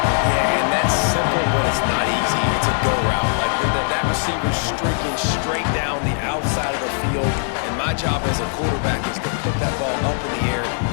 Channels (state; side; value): silent; right; digital silence